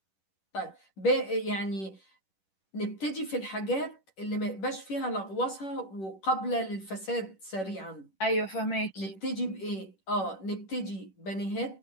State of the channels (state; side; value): late; right; 10 ms